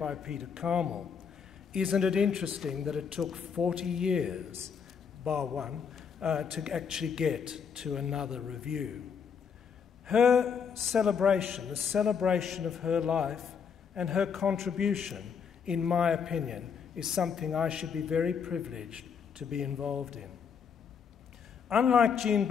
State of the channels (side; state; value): right; quieter; 6.7 dB